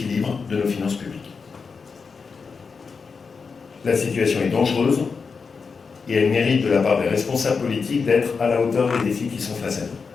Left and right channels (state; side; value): quieter; right; 5.2 dB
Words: de nos finances publiques. La situation est dangereuse et elle mérite de la part des responsables politiques d'être à la hauteur des défis qui sont face à nous.